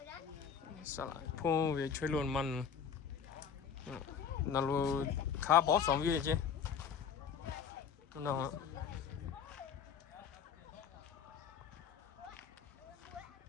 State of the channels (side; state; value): right; quieter; 7.2 dB